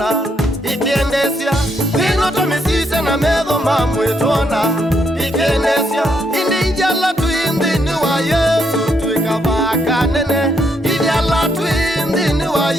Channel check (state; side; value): normal; both; correlation 0.76